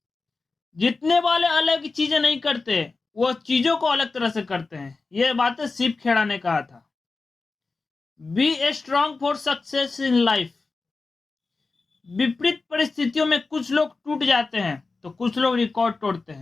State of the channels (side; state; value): right; quieter; 3.9 dB